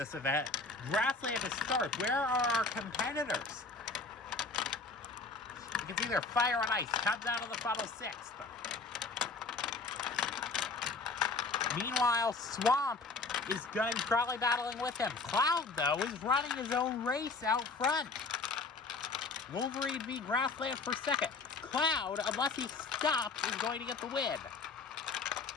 event. Grassland is third. Where are our competitors? You can see there, Fire and Ice comes out of the funnel sixth. Meanwhile, Swamp is going to be probably battling with him. Cloud, though, is running his own race out front. Wolverine v. Grassland for second. Cloud, unless he stops, is going to get the win.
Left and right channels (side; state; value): right; quieter; 4.0 dB